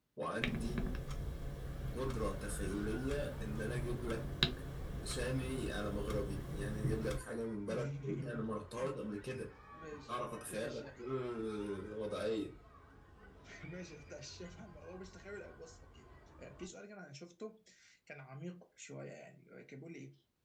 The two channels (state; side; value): identical; both; correlation 1.00